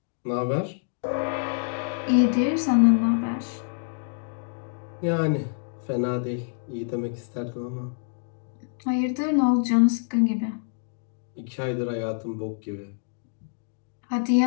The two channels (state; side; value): silent; right; digital silence